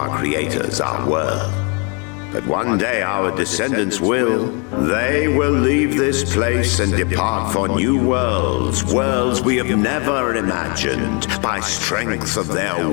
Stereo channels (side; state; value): right; quieter; 34.7 dB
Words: creators, our world. But one day our descendants will. They will leave this place and depart for new worlds, worlds we have never imagined, by strength of their